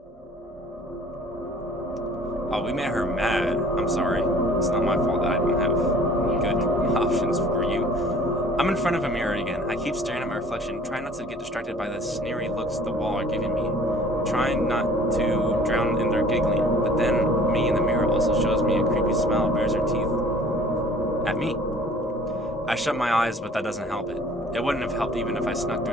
Oh, we made her mad. I'm sorry. It's not my fault that I don't have good options for you. I'm in front of a mirror again. I keep staring at my reflection, trying not to get distracted by the sneery looks the wall are giving me. Trying not to drown in their giggling. But then, me in the mirror also shows me a creepy smile bares her teeth. At me. I shut my eyes, but that doesn't help it. It wouldn't have helped even if I snuck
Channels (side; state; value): both; normal; correlation 0.51